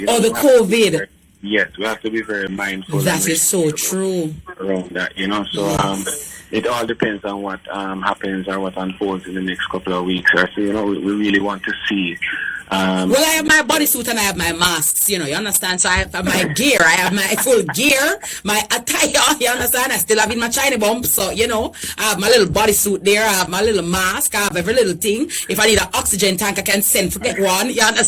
The COVID. Yes, we have to be very mindful. That is so true. Around that, so it all depends on what happens or what unfolds in the next couple of weeks. So we really want to see. Well, I have my bodysuit and I have my masks, you understand? So I have my gear, I have my full gear, my attire, you understand? I still have in my China bump, so, I have my little bodysuit there, I have my little mask, I have every little thing. If I need an oxygen tank, I can send for get one, you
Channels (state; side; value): identical; both; correlation 1.00